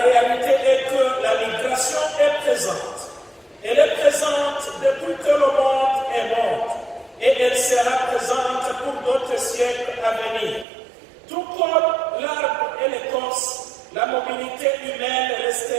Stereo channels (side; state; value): left; drops out; at 10.7 s